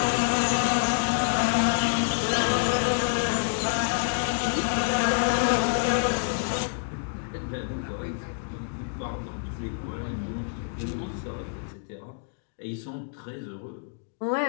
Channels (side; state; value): right; silent; digital silence